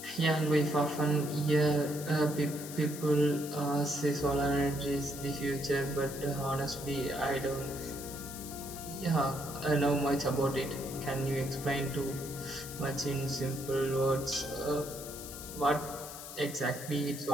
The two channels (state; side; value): noise; left; hiss, 11 dB below the sound